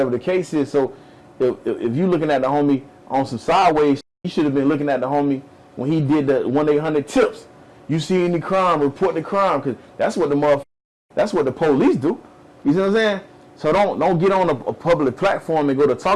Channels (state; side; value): identical; both; correlation 1.00